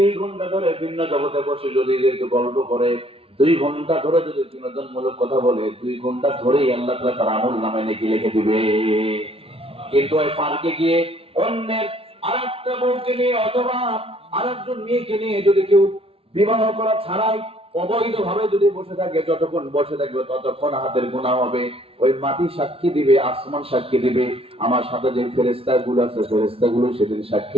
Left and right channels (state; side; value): late; left; 0.27 ms